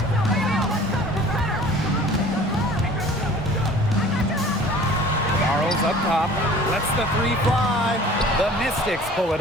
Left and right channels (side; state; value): both; normal; correlation 0.47